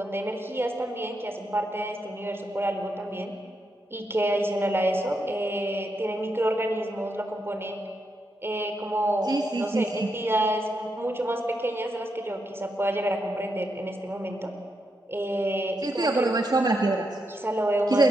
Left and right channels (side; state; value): both; normal; correlation 0.82